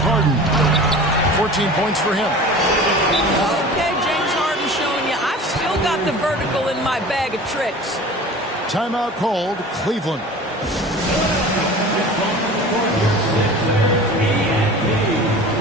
14 points for him. Okay, James Harden showing you I've still got the vertical in my bag of tricks. Timeout called, Cleveland.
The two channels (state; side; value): normal; both; correlation 0.39